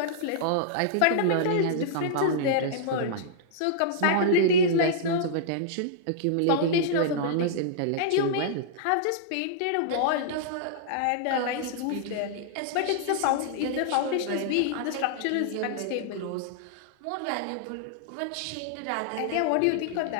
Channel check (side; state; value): both; different; correlation -0.02